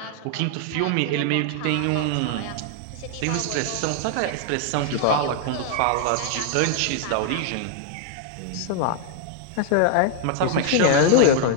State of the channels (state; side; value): different; both; correlation 0.00